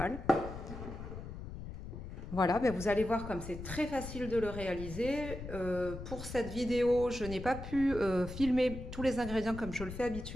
Voilà, ben vous allez voir comme c'est très facile de le réaliser. Pour cette vidéo, je n'ai pas pu filmer tous les ingrédients comme je le fais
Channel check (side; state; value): left; noise; rumble, 9 dB below the sound